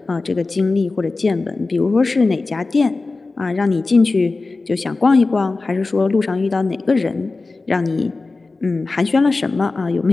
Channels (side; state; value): right; quieter; 3.6 dB